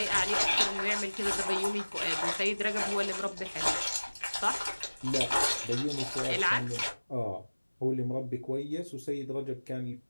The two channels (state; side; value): inverted; both; correlation -1.00